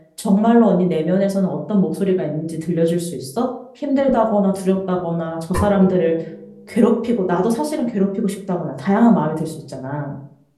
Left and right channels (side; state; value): both; identical; correlation 1.00